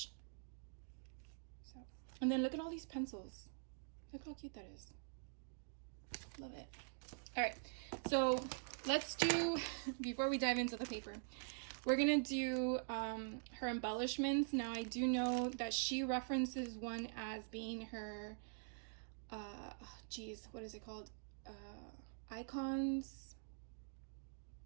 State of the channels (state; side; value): silent; left; digital silence